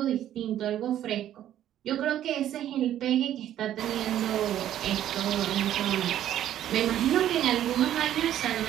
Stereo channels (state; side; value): quieter; left; 11.6 dB